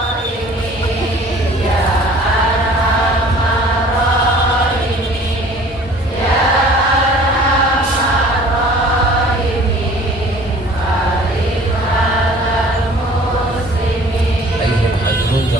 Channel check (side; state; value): both; normal; correlation 0.49